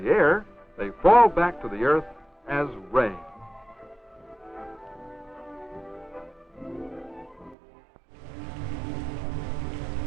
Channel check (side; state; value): left; drops out; at 7.6 s